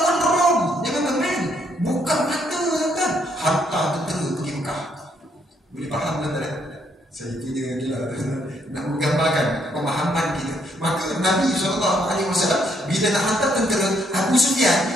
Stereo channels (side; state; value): both; normal; correlation 0.72